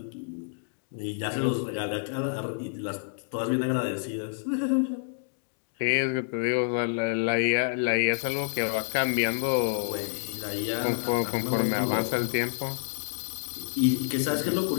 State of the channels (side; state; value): right; silent; digital silence